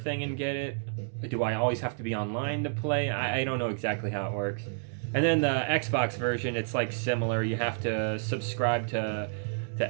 and get it? Do I always have to be online to play? I don't know exactly how it works. And then the Xbox version, it's like similar. You have to subscribe to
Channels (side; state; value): left; silent; digital silence